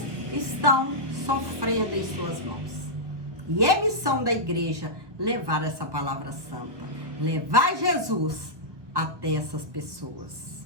estão sofrendo em suas mãos. E é missão da igreja levar essa palavra santa, levar Jesus até essas pessoas.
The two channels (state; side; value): late; left; 1.2 ms